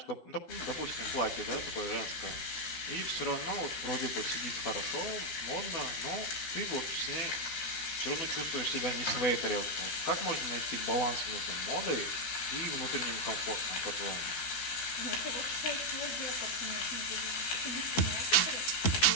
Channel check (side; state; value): right; late; 12 ms